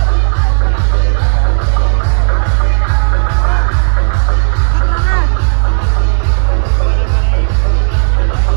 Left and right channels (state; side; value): silent; left; digital silence